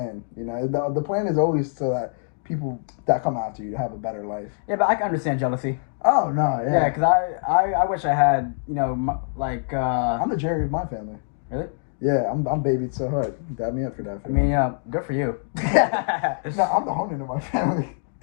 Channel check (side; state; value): right; silent; digital silence